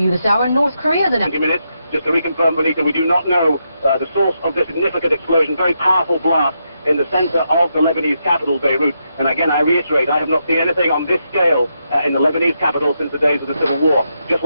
this hour. North Korea, the next 20 minutes. Just to reconfirm, Bonita, we do not know the source of this significant explosion, very powerful blast in the center of the Lebanese capital, Beirut. And again, I reiterate, I have not seen anything on this scale in the Lebanese capital since the days of the Civil War. Just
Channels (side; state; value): both; inverted; correlation -0.82